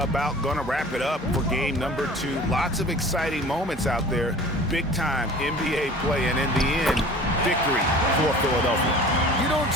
going to wrap it up for game number 2. Lots of exciting moments out there. Big-time NBA play, and in the end, victory for Philadelphia. You don't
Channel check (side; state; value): both; normal; correlation 0.43